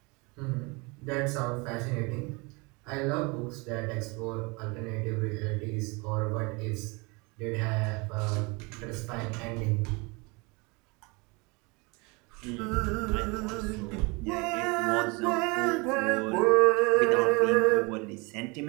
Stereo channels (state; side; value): quieter; left; 28.0 dB